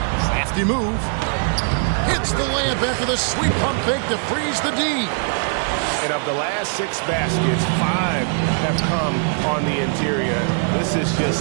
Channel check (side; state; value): left; silent; 60 dB below the other